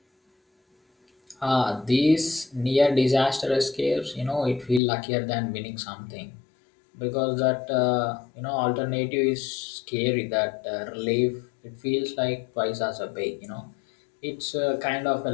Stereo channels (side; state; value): right; drops out; at 4.8 s